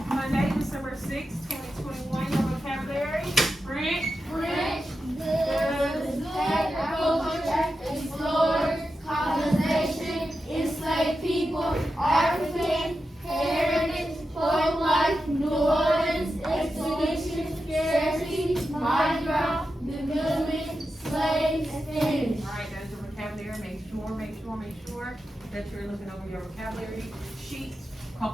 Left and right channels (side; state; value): both; normal; correlation 0.90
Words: Monday, December 6th, 2021. Your vocabulary. French. French, goods, agriculture, explorers, colonization, enslaved people, African, heritage, folk life, New Orleans, expedition, scarcity, Mardi Gras, development, slaves, Spanish. Alright, that's your vocabulary. Make sure that you're looking over your vocabulary sheet a